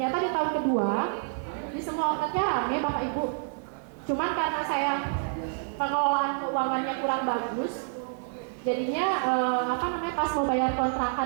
di tahun kedua, di semua outletnya rame Bapak Ibu. Cuman karena saya pengelolaan keuangannya kurang bagus, jadinya pas mau bayar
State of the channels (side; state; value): left; silent; digital silence